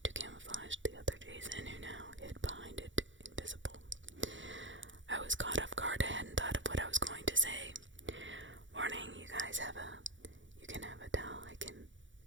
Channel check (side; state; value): left; late; 0.55 ms